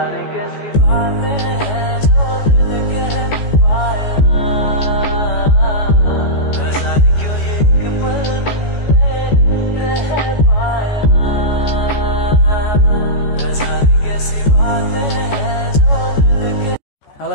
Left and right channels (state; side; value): late; right; 14 ms